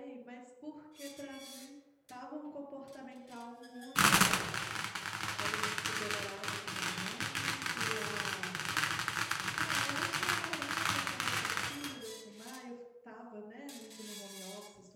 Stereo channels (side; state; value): both; identical; correlation 1.00